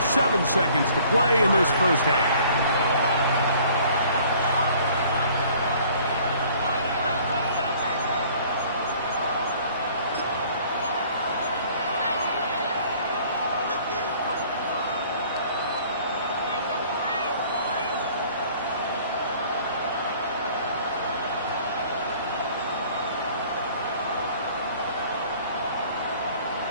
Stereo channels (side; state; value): both; inverted; correlation -0.54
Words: seconds to play in this first half.